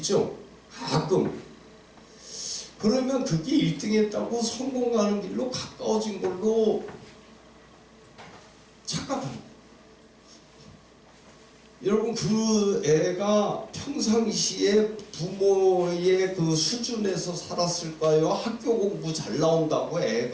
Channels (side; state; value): both; identical; correlation 1.00